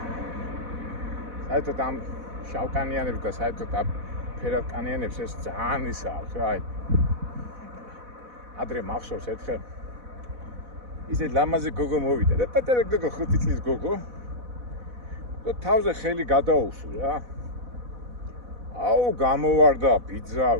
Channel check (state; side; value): late; left; 4.1 ms